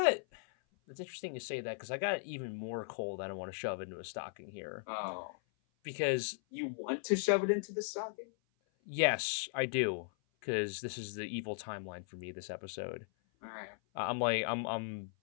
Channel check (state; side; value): silent; right; 53 dB below the other